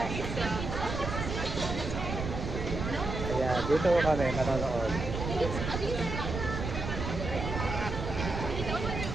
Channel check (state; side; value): noise; right; rumble, 4 dB below the sound